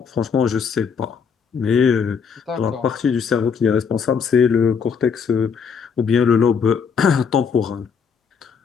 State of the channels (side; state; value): right; quieter; 6.3 dB